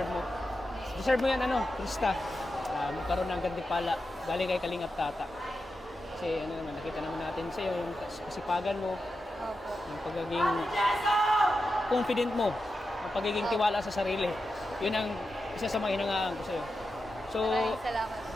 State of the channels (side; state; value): both; normal; correlation 0.89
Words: mo. Deserve mo yan, Krista. Magkaroon ng gantimpala galing kay Kalingap Tata. Kasi ano naman, nakita naman natin sa'yo yung kasipagan mo, Opo. yung pagiging confident mo, yung pagiging tiwala sa sarili. Yun ang isa sa mga hinangaan ko sa'yo. So, Maraming salamat